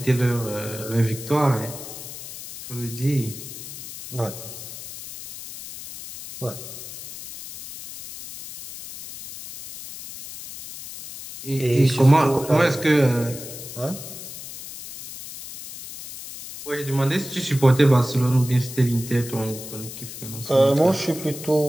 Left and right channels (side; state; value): left; noise; hiss, 12 dB below the sound